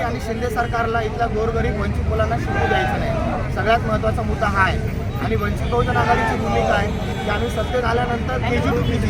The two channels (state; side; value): identical; both; correlation 1.00